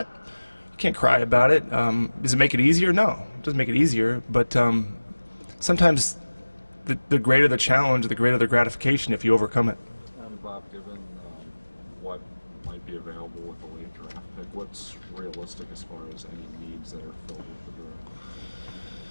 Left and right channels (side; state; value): both; inverted; correlation -1.00